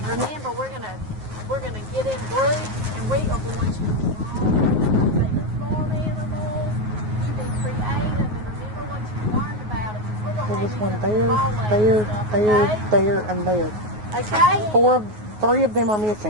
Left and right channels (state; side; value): late; left; 9.4 ms